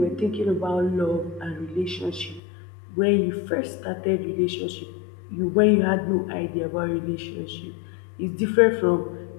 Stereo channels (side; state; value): right; drops out; at 2.4 s